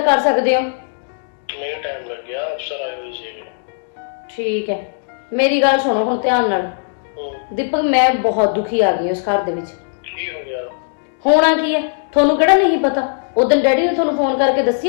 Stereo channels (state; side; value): silent; right; digital silence